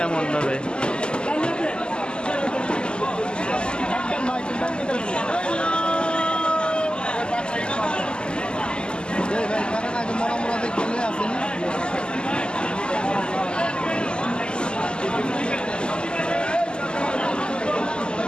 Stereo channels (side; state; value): right; late; 0.049 ms